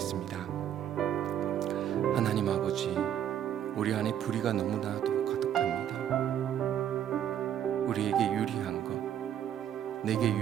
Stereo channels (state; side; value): quieter; left; 10.0 dB